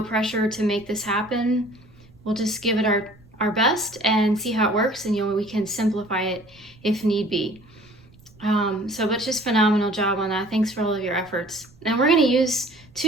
pressure to make this happen. We'll just give it our best and see how it works, and we can simplify it if need be. But just phenomenal job on that. Thanks for all of your efforts. And we're going to use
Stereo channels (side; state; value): right; noise; rumble, 27 dB below the sound